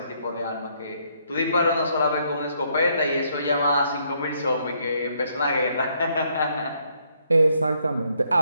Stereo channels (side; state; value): both; inverted; correlation -0.71